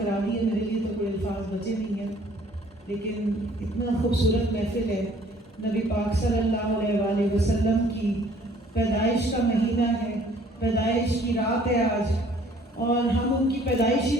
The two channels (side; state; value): both; normal; correlation 0.57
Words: دی ہے، میرے لیے تو کوئی الفاظ بچے نہیں ہیں، لیکن اتنا خوبصورت محفل ہے۔ نبی پاک صلی اللہ علیہ وآلہ وسلم کی پیدائش کا مہینہ ہے، پیدائش کی رات ہے آج، اور ہم ان کی پیدائش ہی